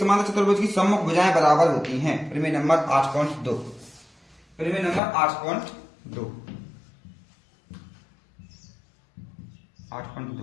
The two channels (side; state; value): right; drops out; at 5.0 s